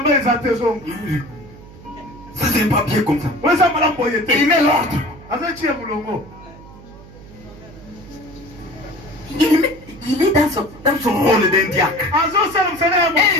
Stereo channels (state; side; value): noise; right; hum, 19 dB below the sound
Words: Ça, c'est pas bien comme ça. Il met l'ordre. Il est dans son rôle d'un diacre. Et